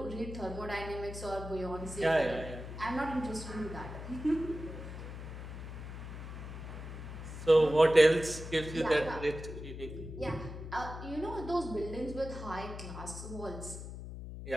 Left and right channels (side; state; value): left; noise; hum, 9 dB below the sound